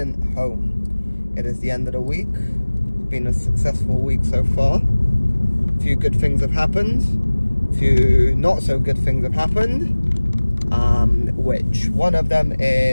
home. It is the end of the week. It's been a successful week so far. A few good things have happened. A few not so good things have happened. Which one of them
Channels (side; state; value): both; inverted; correlation -1.00